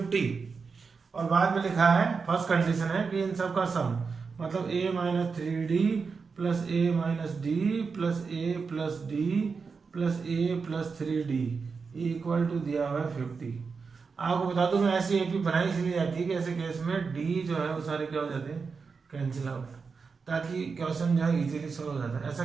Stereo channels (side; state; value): left; quieter; 5.1 dB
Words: और बाद में लिखा है फर्स्ट कंडीशन है कि इन सब का सम, मतलब a minus 3 d plus a minus d plus a plus d plus a plus 3 d equal to दिया हुआ है 50। आपको बता दूं मैं ऐसी एपी बनाई इसलिए जाती है कि ऐसे केस में डी जो है वो सारे क्या हो जाते हैं, कैंसिल आउट, ताकि क्वेश्चन जो है इजीली सॉल्व हो जाता है। ऐसा